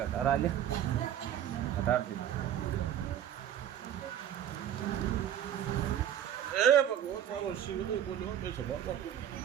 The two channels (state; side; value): quieter; left; 10.3 dB